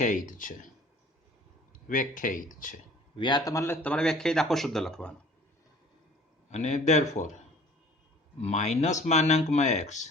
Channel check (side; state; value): both; normal; correlation 0.50